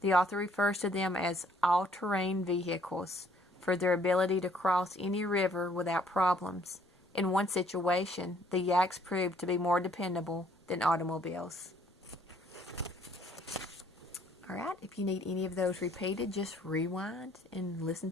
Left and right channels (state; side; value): normal; both; correlation 0.63